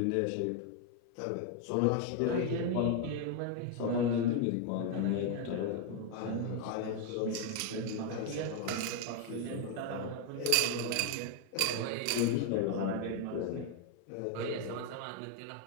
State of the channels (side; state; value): both; different; correlation 0.01